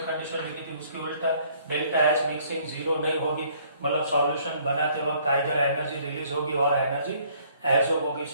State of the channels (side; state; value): both; inverted; correlation -0.61